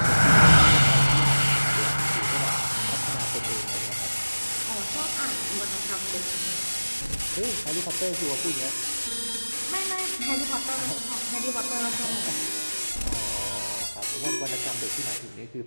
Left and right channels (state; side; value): inverted; both; correlation -1.00